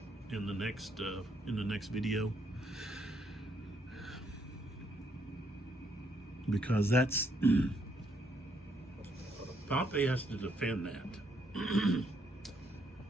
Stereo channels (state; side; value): normal; both; correlation 0.72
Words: in the next video, because that's Pompey has to defend that.